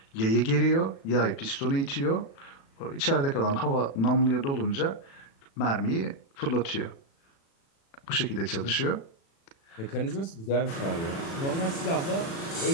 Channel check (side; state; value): right; late; 36 ms